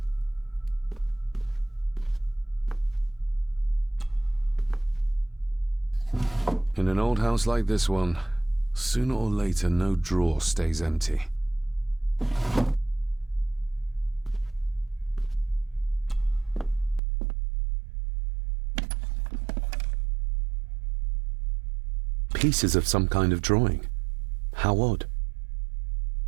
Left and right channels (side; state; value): left; drops out; at 17.0 s